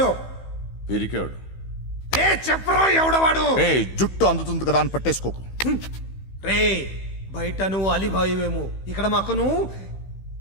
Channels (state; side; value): late; right; 15 ms